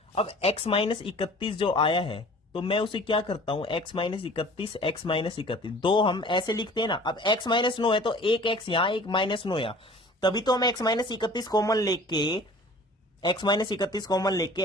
अब x माइनस 31 जो आया है तो मैं उसे क्या करता हूं? x माइनस 31 x माइनस 31 दो हम ऐसे लिखते हैं ना। अब x माइनस 9 है तो एक x यहां एक माइनस 9 यहां, तभी तो हम x माइनस 31 कॉमन लेके x माइनस 31 कॉमन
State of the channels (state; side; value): normal; both; correlation 0.47